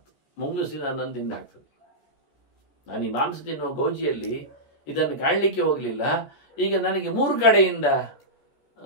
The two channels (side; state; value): right; late; 14 ms